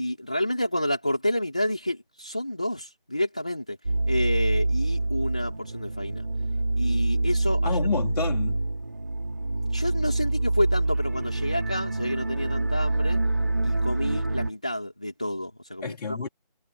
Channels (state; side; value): inverted; both; correlation -0.93